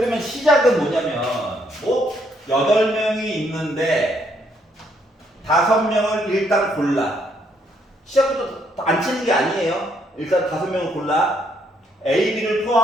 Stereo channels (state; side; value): normal; both; correlation 0.72